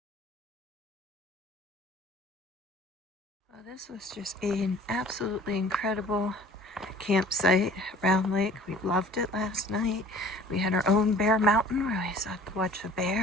Well, this was just an absolutely incredible campsite, Round Lake. We loved it last night. We had our own bear mountain where we sat to watch the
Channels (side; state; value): both; normal; correlation 0.48